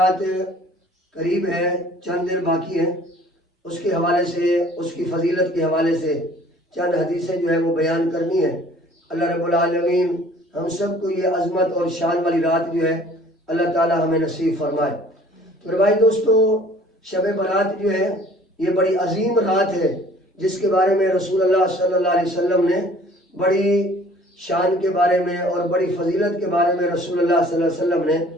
قریب ہے، چند دن باقی ہیں۔ اس کے حوالے سے، اس کی فضیلت کے حوالے سے چند حدیثیں جو ہے وہ بیان کرنی ہے۔ اللہ رب العالمین ہم سب کو یہ عظمت اور شان والی رات جو ہے اللہ تعالی ہمیں نصیب فرمائے۔ تو بھائی دوستو، شب برات جو ہے یہ بڑی عظیم رات ہے، جس کے بارے میں رسول اللہ صلی اللہ علیہ وسلم نے بڑی شان کے بارے میں اور بڑی فضیلت کے بارے میں رسول اللہ صلی اللہ علیہ وسلم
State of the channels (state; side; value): normal; both; correlation 0.52